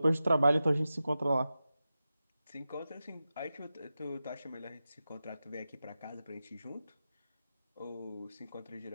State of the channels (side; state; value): both; inverted; correlation -0.92